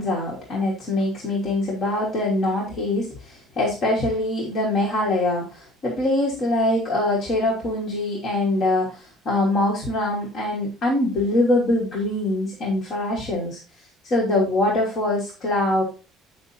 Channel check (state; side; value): normal; both; correlation 0.48